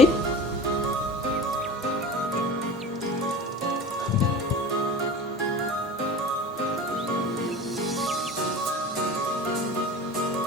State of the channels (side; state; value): both; normal; correlation 0.36